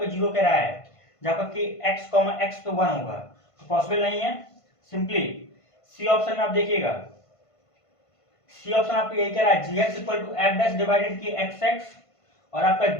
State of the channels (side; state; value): right; late; 1.5 ms